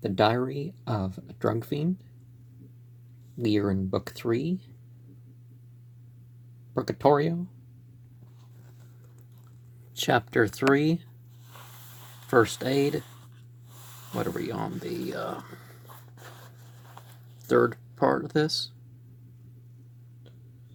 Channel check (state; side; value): identical; both; correlation 1.00